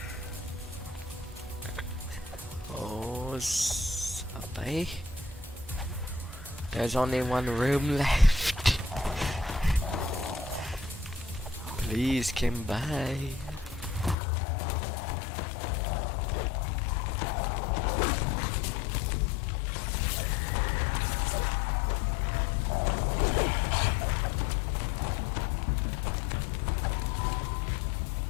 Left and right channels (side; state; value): right; drops out; at 14.2 s